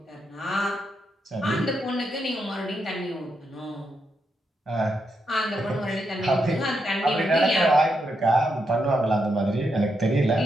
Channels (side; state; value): both; normal; correlation 0.82